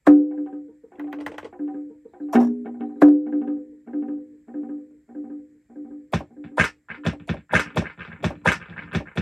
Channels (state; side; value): identical; both; correlation 1.00